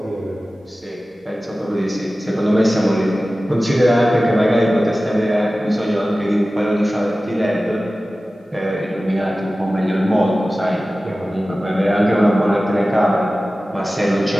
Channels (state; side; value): normal; both; correlation 0.96